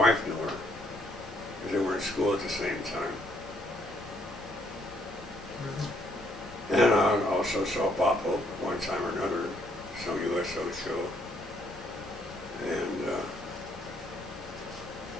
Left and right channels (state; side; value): normal; both; correlation 0.69